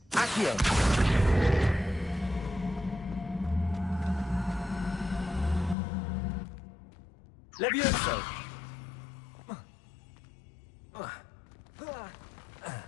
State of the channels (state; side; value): drops out; right; at 5.8 s